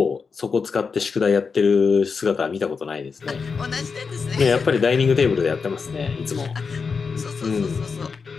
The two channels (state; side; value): quieter; right; 5.2 dB